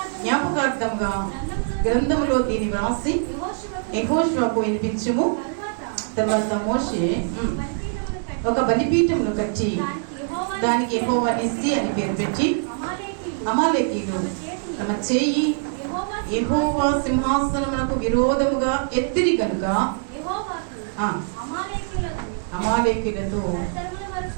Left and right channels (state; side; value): silent; left; digital silence